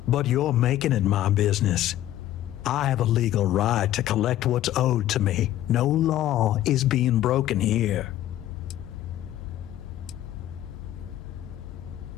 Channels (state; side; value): quieter; right; 13.2 dB